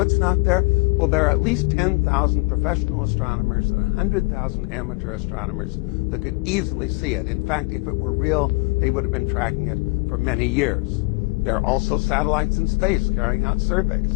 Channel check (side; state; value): right; quieter; 28.0 dB